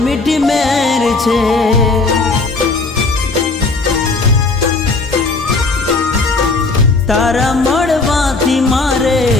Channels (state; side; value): quieter; right; 3.7 dB